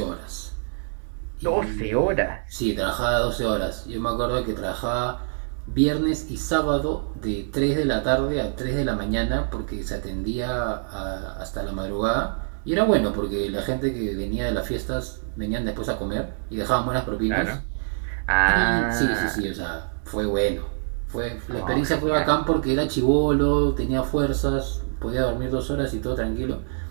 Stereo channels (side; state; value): left; silent; digital silence